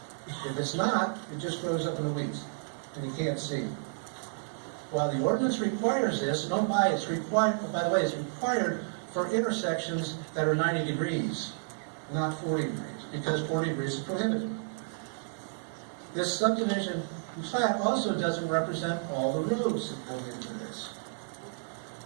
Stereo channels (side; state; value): left; silent; digital silence